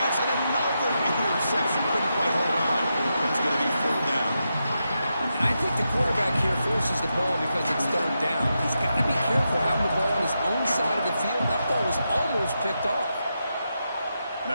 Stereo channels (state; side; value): inverted; both; correlation -0.86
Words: and another interception. Couldn't quite hold on. It's going to be fourth down. And I think the quarterback here forces the ball because it's third down. He's got to be careful having the ball on his own side of the field. That ball was almost picked off. And